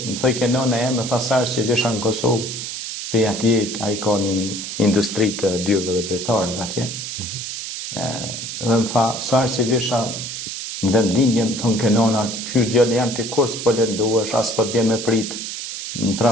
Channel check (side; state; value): right; noise; hiss, 6 dB below the sound